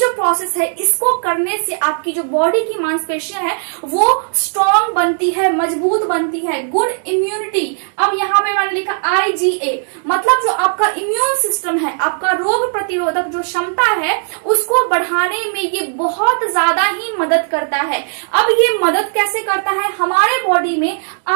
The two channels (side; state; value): left; silent; digital silence